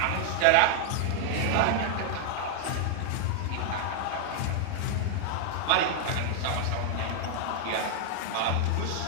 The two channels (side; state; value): both; different; correlation 0.00